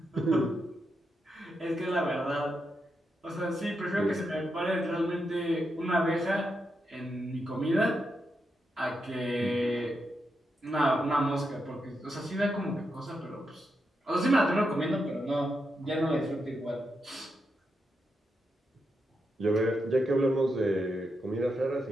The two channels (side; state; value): both; normal; correlation 0.84